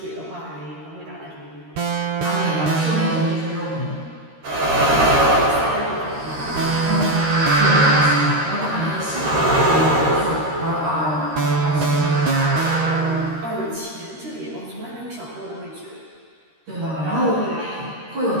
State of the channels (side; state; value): left; late; 13 ms